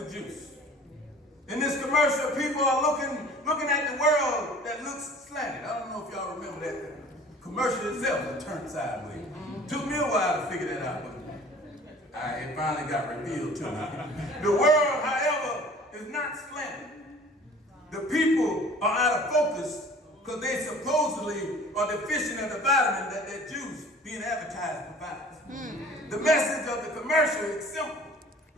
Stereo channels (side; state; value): both; normal; correlation 0.47